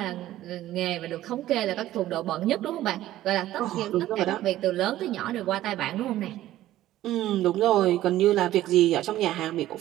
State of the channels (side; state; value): left; quieter; 14.2 dB